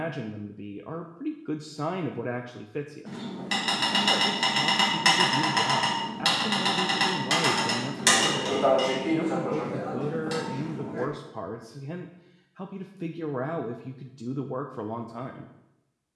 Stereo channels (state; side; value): identical; both; correlation 1.00